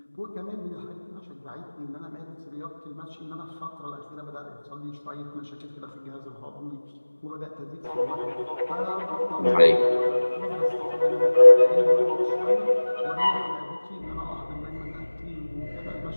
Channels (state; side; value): inverted; both; correlation -1.00